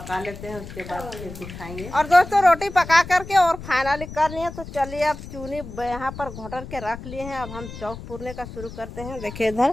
लेते हैं, उसके बाद फिर दिखाएंगे। और दोस्तों रोटी पका करके और फाइनली कर लिए। तो चलिए अब चूनी यहाँ पर घोटर के रख लिए हैं। अब हम चौक पूरने का शुरू करते हैं। देखिए इधर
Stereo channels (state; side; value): noise; left; rumble, 12 dB below the sound